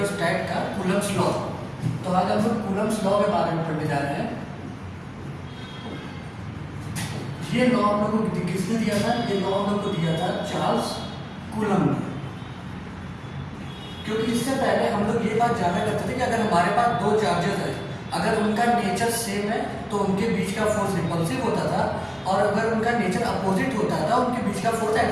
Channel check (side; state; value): both; identical; correlation 1.00